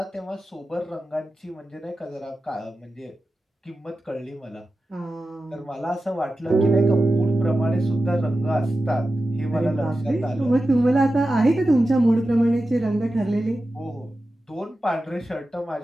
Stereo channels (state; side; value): normal; both; correlation 0.93